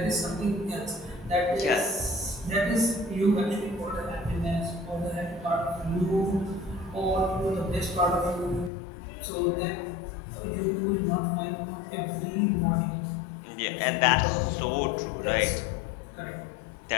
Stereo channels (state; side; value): drops out; right; at 8.7 s